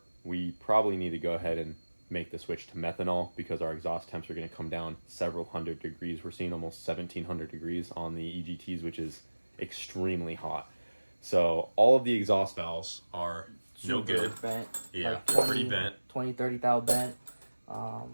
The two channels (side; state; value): both; inverted; correlation -1.00